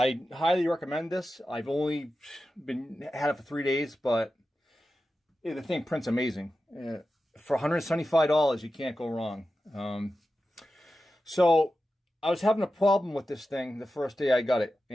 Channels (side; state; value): both; normal; correlation 0.92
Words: highly recommend this. I've only had it for 3 days, but the thing prints amazing. For $175, you can't go wrong. So I was having a problem with this thing the first day I got it,